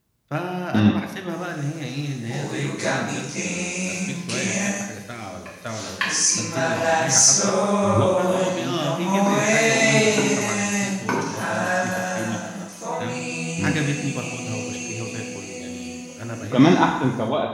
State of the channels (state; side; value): identical; both; correlation 1.00